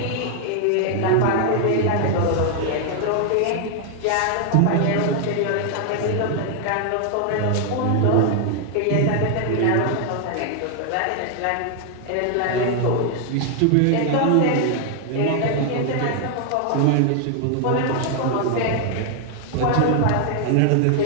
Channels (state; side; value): different; both; correlation 0.00